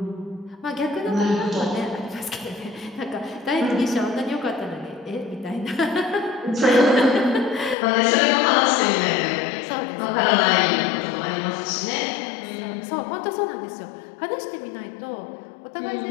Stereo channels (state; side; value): drops out; right; at 7.8 s